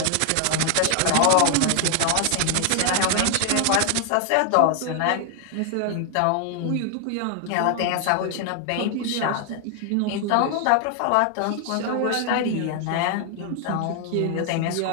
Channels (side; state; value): both; different; correlation 0.00